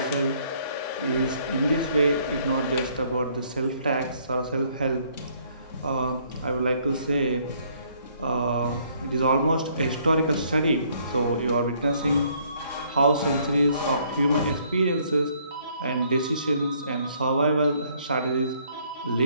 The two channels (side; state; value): both; inverted; correlation -0.65